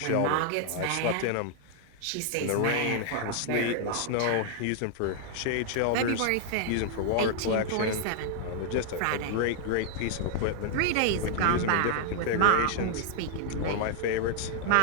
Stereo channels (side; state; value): both; different; correlation 0.00